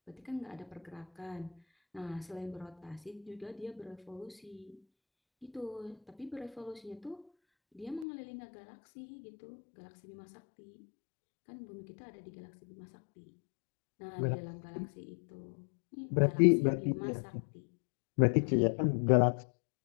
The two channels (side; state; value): right; drops out; at 8.1 s